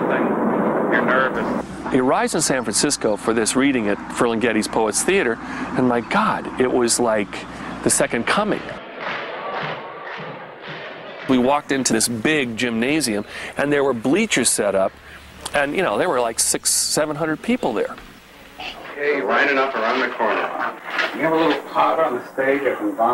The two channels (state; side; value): identical; both; correlation 1.00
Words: you're nervous. He arrives in San Francisco for this reading at Ferlinghetti's Poets Theater, and my God, it was like the second coming. We walked into this big gymnasium, and there were bleachers set up, and, you know, there were like 600-700 people there. Hey, lining up around the corner. You have a little pot on the stage I can